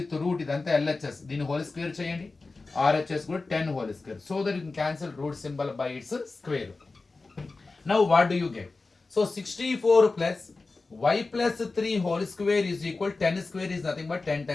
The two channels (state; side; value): quieter; right; 3.7 dB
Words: root, ఇదంతా LHS, దీన్ని హోల్ స్క్వేర్ చేయండి, RHS కూడా 10 whole square, so that you can cancel root symbol by its square. Now what do you get? So 64 plus y plus 3 whole square is equal, 10 square is nothing but 10